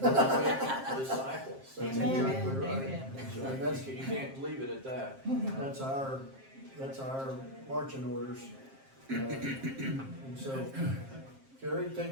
and make disciples. That's Amen. exactly right. Amen. So And that's- you can't leave it at that. That's our marching orders. And so, Kerry, take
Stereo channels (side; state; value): left; late; 7.5 ms